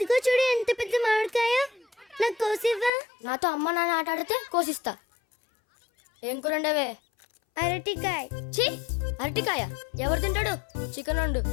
చూడు ఎంత పెద్ద మామిడికాయ, నాకు కోసివ్వా. నాతో అమ్మ నాన్న ఆట ఆడితే కోసిస్తా. ఏం కూరండవే? అరటికాయ. ఛీ, అరటికాయ ఎవరు తింటాడు? చికెన్ వండు.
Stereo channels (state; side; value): drops out; right; at 2.9 s